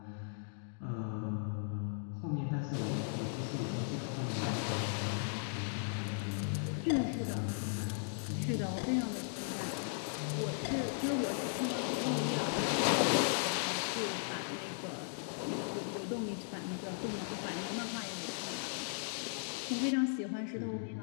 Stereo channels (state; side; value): silent; right; digital silence